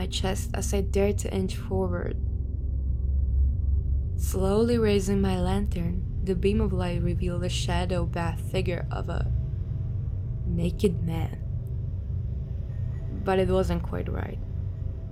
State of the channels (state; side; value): identical; both; correlation 1.00